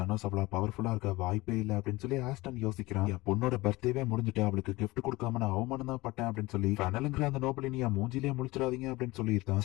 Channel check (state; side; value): quieter; right; 20.8 dB